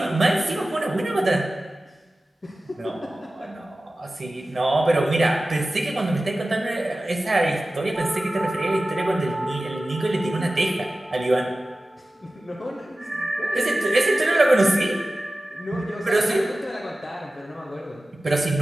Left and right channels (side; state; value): both; normal; correlation 0.96